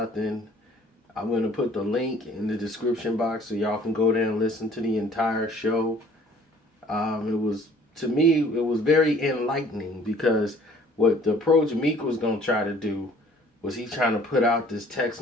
I'm going to put the link in the description box so y'all can go there and listen to the entire show. To me, it was very enlightening because what the approach Meek was going to try to do was he's trying to put out this text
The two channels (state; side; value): normal; both; correlation 0.54